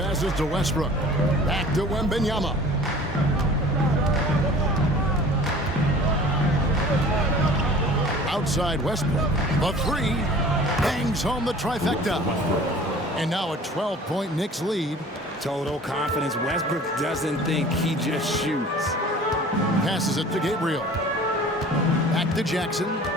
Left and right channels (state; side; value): normal; both; correlation 0.46